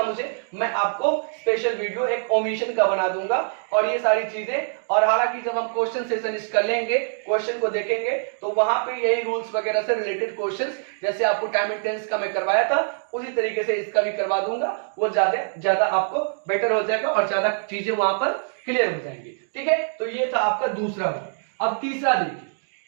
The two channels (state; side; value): silent; left; digital silence